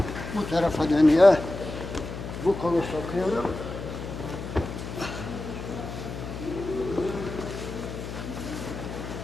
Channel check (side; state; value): left; noise; hum, 8 dB below the sound